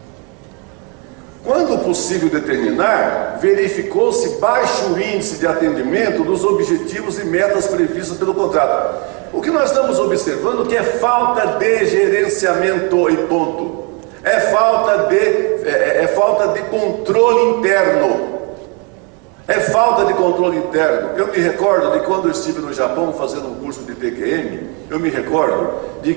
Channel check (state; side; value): quieter; left; 33.4 dB